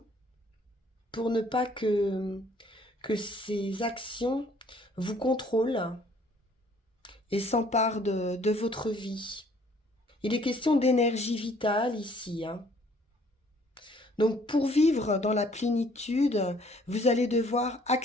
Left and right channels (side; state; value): both; normal; correlation 0.60